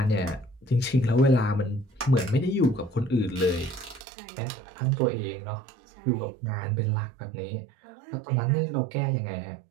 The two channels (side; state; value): left; drops out; at 4.0 s